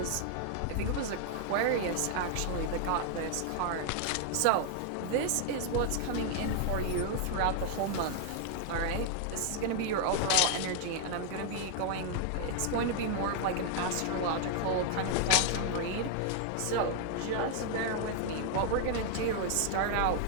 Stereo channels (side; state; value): both; different; correlation 0.00